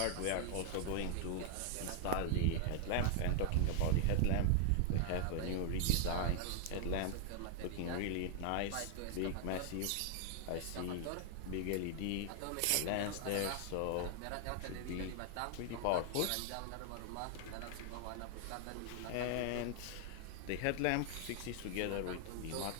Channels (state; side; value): different; both; correlation 0.00